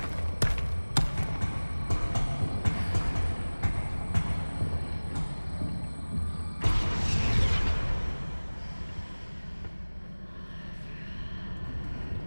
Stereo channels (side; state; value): both; inverted; correlation -1.00